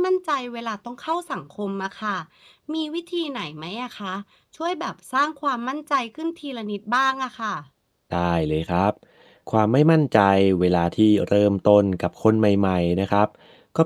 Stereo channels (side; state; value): both; identical; correlation 1.00